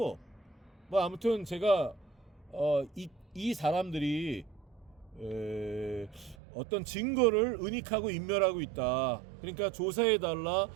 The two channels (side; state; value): left; drops out; at 6.4 s